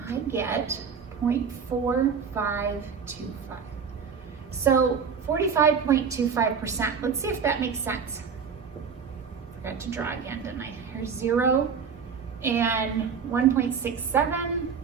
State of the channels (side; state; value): left; quieter; 6.3 dB